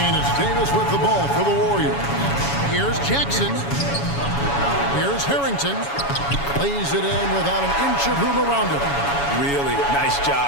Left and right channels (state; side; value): late; right; 7.1 ms